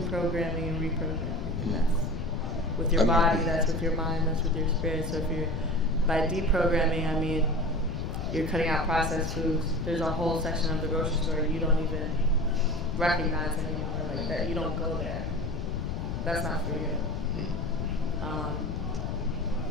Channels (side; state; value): left; noise; rumble, 3 dB below the sound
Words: and reprogramming. And that's with your body, that's with your mind, that's with your spirit. So by deprogramming, I mean you're cutting out processed foods. There's a whole section of the grocery store you don't even recognize anymore, like that. You don't go there. That's not for you.